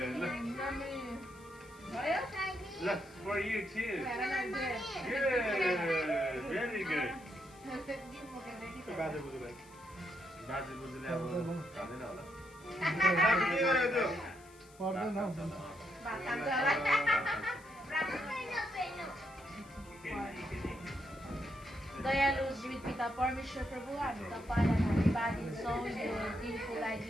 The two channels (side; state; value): left; noise; hiss, 25 dB below the sound